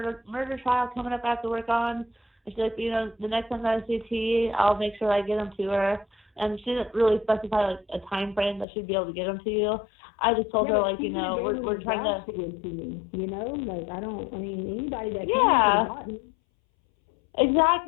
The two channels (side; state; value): right; drops out; at 8.7 s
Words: trial coming up I have to work on. And she's like, the next time I see T, I'll make sure I get them to her. And she didn't really specify like a time frame that she'd be able to get them to you. I just told her like, we're trying to give to me, like anybody that can